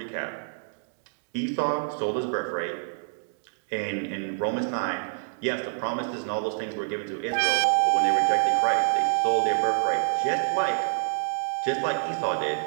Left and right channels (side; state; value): left; silent; digital silence